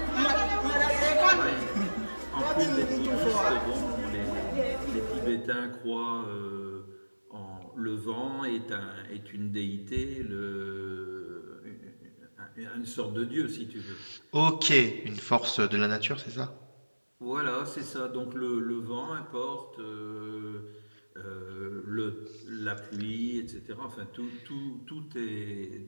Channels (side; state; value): both; inverted; correlation -1.00